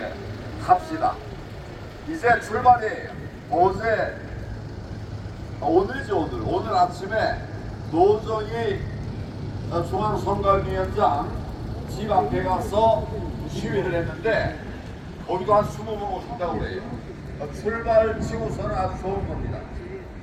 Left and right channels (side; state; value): both; identical; correlation 1.00